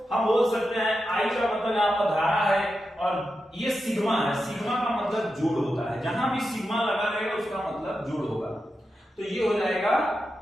हम बोल सकते हैं, आई का मतलब यहाँ पर धारा है और ये सिग्मा है। सिग्मा का मतलब जोड़ होता है। जहां भी सिग्मा लगा रहेगा उसका मतलब जोड़ होगा। तो ये हो जाएगा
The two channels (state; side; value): normal; both; correlation 0.89